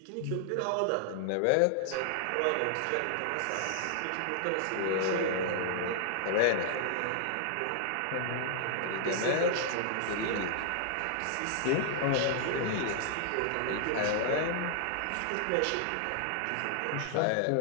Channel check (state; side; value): different; both; correlation -0.01